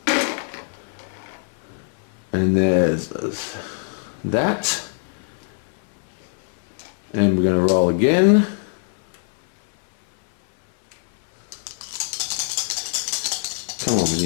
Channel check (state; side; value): silent; right; 56 dB below the other